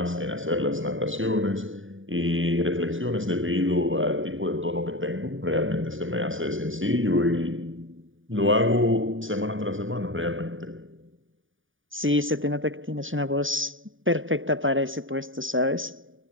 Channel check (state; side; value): late; left; 0.57 ms